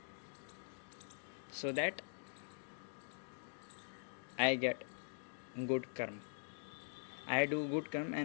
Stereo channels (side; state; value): right; silent; digital silence